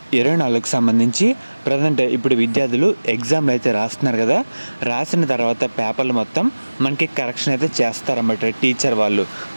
సంబంధించి ప్రజెంట్ ఇప్పుడు విద్యార్థులు ఎగ్జామ్లు అయితే రాస్తున్నారు కదా. రాసిన తర్వాత పేపర్లు మొత్తం మనకి కరెక్షన్ అయితే చేస్తారన్నమాట టీచర్ వాళ్ళు.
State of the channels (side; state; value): both; inverted; correlation -1.00